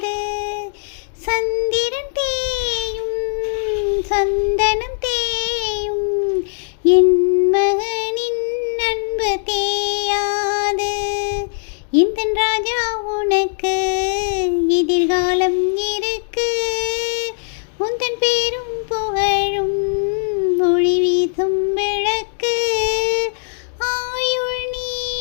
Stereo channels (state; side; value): silent; right; digital silence